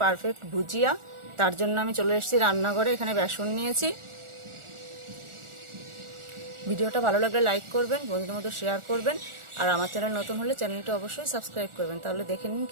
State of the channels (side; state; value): left; late; 1.4 ms